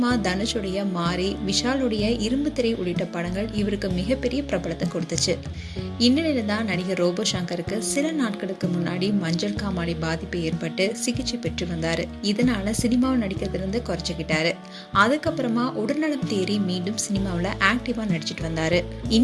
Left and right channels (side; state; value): both; identical; correlation 1.00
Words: தனுஷுடைய மாரி, விஷாலுடைய இரும்பு திரை உள்ளிட்ட படங்கள் இவருக்கு மிகப்பெரிய பிரபலத்தை கொடுத்துச்சு. இந்நிலையில தான் நடிகர் ரோபோ சங்கருக்கு சில நாட்களுக்கு முன்னாடி மஞ்சள் காமாலை பாதிப்பு ஏற்பட்டு சிகிச்சை பெற்று வந்தாரு. இதனால சினிமாவில் நடிக்கிறதுலேருந்து குறைச்சிக்கிட்டாரு. அதுக்கப்புறமா உடல்நலம் தேறி மீண்டும் சினிமாவில் ஆக்டிவா நடிச்சிட்டு வந்தாரு.